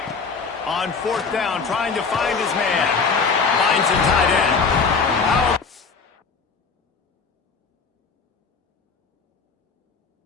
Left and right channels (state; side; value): quieter; right; 5.0 dB